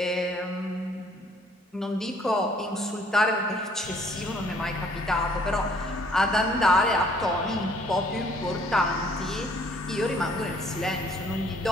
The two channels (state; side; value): normal; both; correlation 0.61